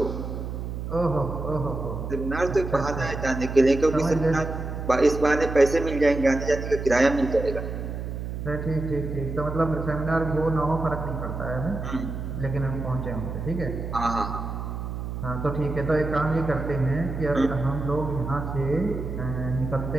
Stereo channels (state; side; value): noise; right; hum, 5 dB below the sound